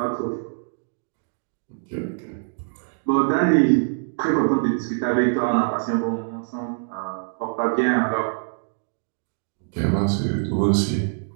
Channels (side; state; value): left; silent; digital silence